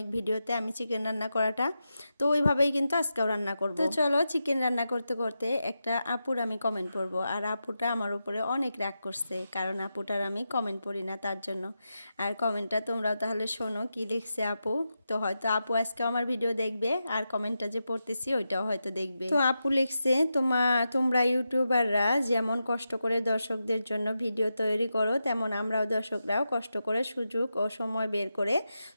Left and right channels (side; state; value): both; inverted; correlation -0.89